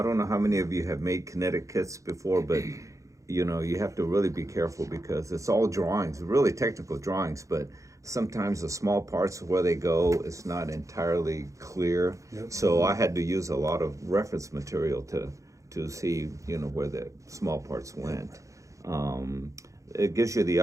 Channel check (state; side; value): late; left; 0.15 ms